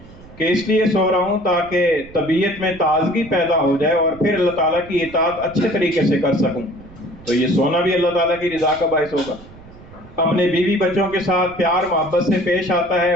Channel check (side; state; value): right; noise; rumble, 20 dB below the sound